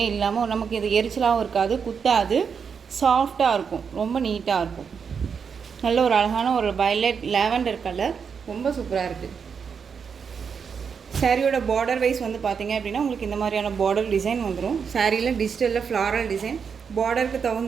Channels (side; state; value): left; quieter; 6.4 dB